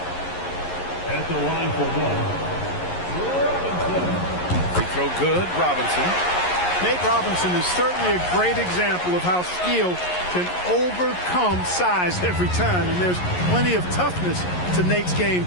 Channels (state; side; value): late; right; 11 ms